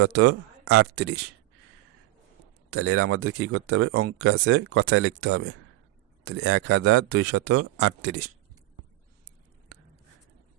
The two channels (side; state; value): left; quieter; 17.4 dB